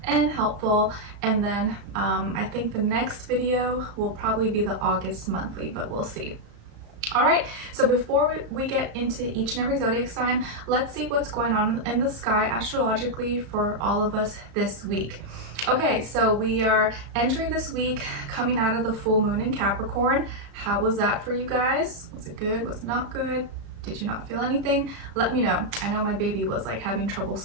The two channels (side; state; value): left; late; 35 ms